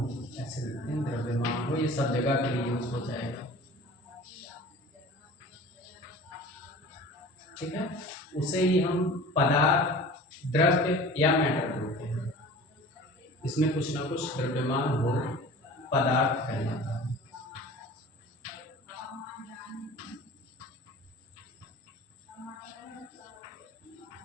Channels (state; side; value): normal; both; correlation 0.41